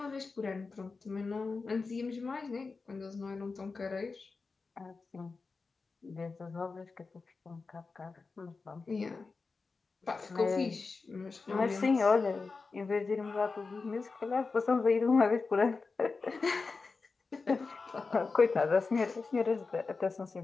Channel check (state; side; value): quieter; right; 4.3 dB